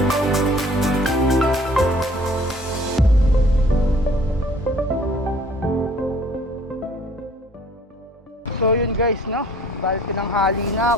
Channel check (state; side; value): normal; both; correlation 0.54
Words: So yun guys, no? Balik tinanghali na